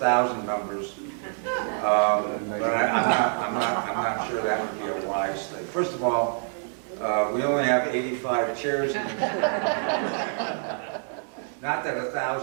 members. But I'm not sure that would be a wise thing. First of all, we only have 85 chairs. Not that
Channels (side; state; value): left; silent; digital silence